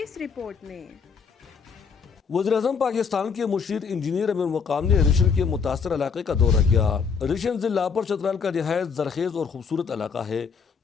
اس رپورٹ میں۔ وزیراعظم پاکستان کے مشیر انجینئر امیر مقام نے ریشن کے متاثرہ علاقے کا دورہ کیا۔ ریشن ضلع پر چترال کا نہایت زرخیز اور خوبصورت علاقہ ہے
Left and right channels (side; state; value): right; quieter; 5.9 dB